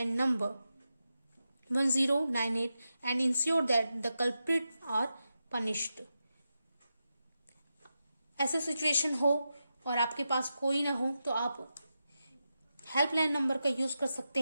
number 1098 and ensure that the culprits are punished. ऐसे सिचुएशन हो और आपके पास कोई ना हो तो आप हेल्पलाइन नंबर का यूज कर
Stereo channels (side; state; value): both; inverted; correlation -0.89